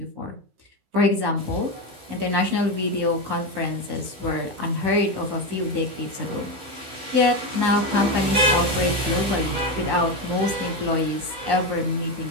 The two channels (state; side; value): late; left; 15 ms